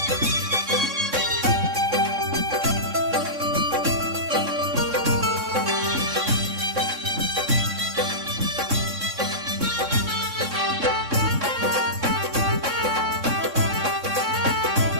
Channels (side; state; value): left; late; 3.6 ms